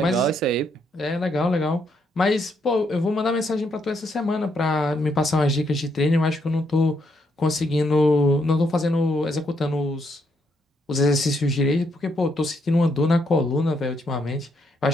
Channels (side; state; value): both; normal; correlation 0.75